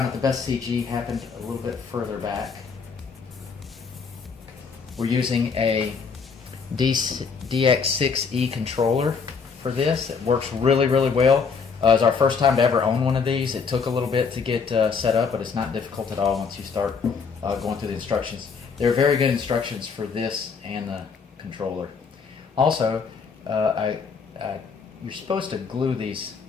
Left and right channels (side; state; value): right; quieter; 5.5 dB